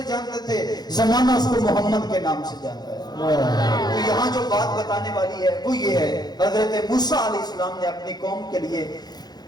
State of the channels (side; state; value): right; late; 0.20 ms